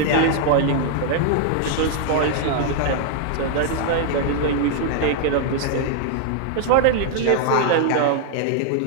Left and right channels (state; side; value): different; both; correlation 0.00